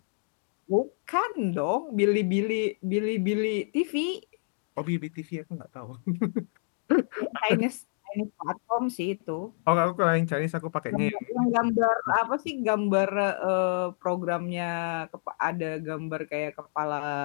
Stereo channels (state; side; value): silent; right; digital silence